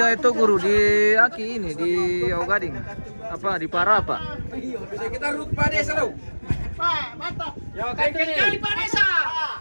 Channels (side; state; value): both; inverted; correlation -1.00